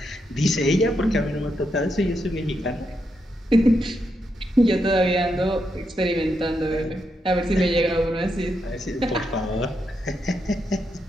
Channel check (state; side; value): normal; both; correlation 0.82